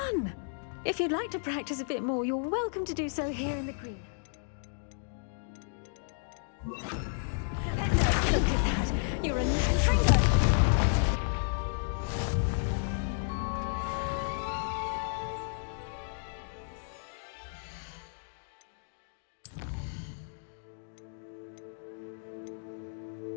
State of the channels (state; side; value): silent; right; digital silence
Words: If you'd like to practice a bit more, you're welcome to do so here in the green. Look at that!